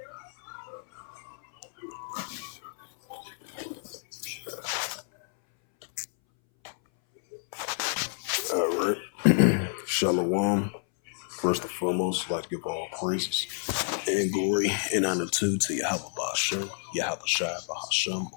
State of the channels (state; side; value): silent; right; 58 dB below the other